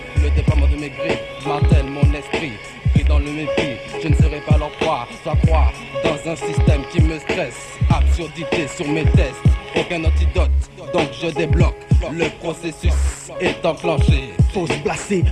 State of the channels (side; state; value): both; identical; correlation 1.00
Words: le déploiement de mes griffes martèle mon esprit. Pris dans le mépris, je ne serai pas leur proie, soit croire dans un système qui me stresse. Absurdité sur mes tests, aucun antidote, donc je débloque. Le processus est enclenché. Faut se placer